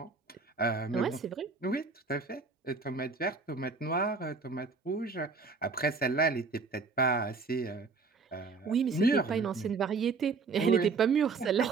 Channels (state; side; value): quieter; left; 4.5 dB